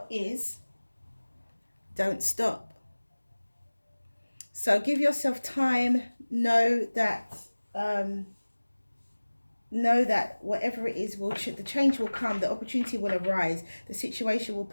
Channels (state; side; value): inverted; both; correlation -1.00